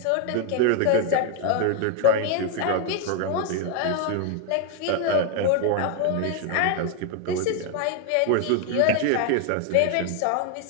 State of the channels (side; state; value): both; different; correlation 0.00